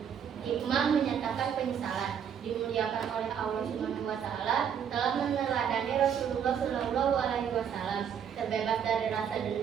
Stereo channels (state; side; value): quieter; left; 8.2 dB